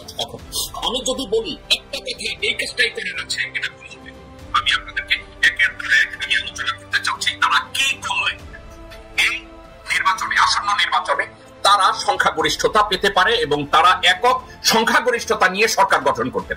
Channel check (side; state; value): both; identical; correlation 1.00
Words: এখন আমি যদি বলি একটা কথা, এই কাজটাই করার আছে, এটা ভুল হবে। আমি আপনাদেরকে একের পর এক আমি আলোচনা করতে চাচ্ছি তারা কি করবে এই নির্বাচনে, আসন্ন নির্বাচনে তারা সংখ্যাগরিষ্ঠতা পেতে পারে এবং তারা একক সংখ্যাগরিষ্ঠতা নিয়ে সরকার গঠন করতে